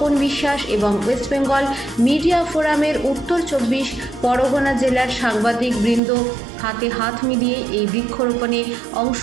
বিশ্বাস এবং ওয়েস্ট বেঙ্গল মিডিয়া ফোরামের উত্তর 24 পরগনা জেলার সাংবাদিক বৃন্দ হাতে হাত মিলিয়ে এই বৃক্ষরোপণে অংশ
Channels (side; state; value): left; drops out; at 6.0 s